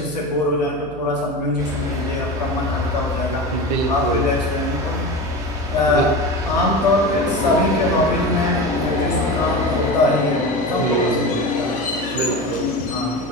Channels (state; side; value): noise; right; hum, 15 dB below the sound